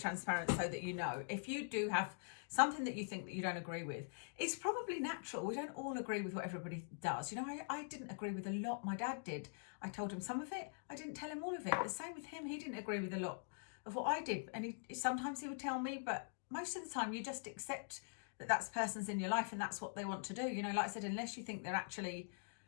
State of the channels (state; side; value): silent; right; digital silence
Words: so that you know, if you do have something that you think that you don't agree with, it's probably natural. We don't all agree with what everybody does. You know, I didn't agree with a lot. My dad did. I told him some of it. I didn't tell him all of it. The same with him. He didn't agree with a lot of what I did. And sometimes he would tell me, but most of the time you just accept that that's person's in your life and that's what they want to do. You know, like I said, unless you think they're actually